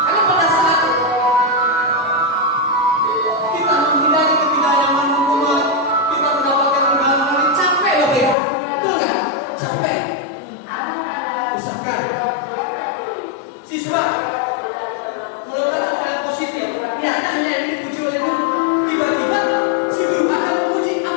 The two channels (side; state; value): right; drops out; at 8.3 s